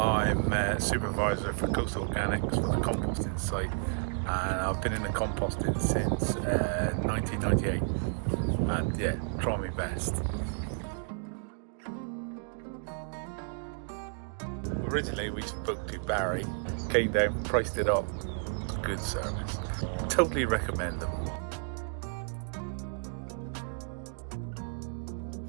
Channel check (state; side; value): silent; left; 57 dB below the other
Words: supervisor for Coastal Organics for the composting site, and I've been in the composting since 1998, and yeah, try my best. Originally we spoke to Barry, came down, priced it up, good service. Totally recommend them.